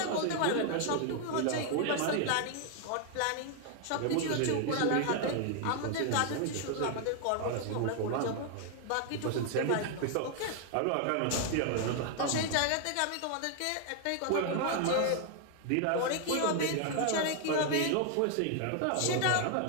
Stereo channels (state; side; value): different; both; correlation 0.00